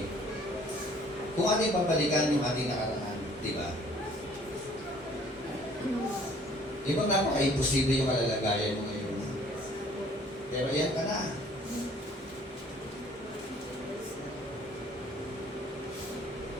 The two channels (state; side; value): normal; both; correlation 0.56